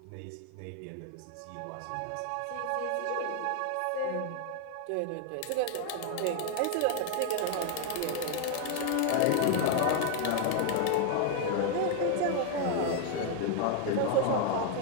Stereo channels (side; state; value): both; different; correlation 0.00